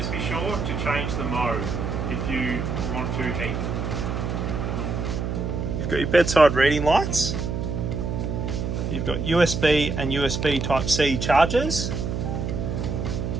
be sure to change the mode if you want to heat. You've got your bedside reading lights. You've got USB and USB Type-C chargers.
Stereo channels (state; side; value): noise; right; hum, 2 dB below the sound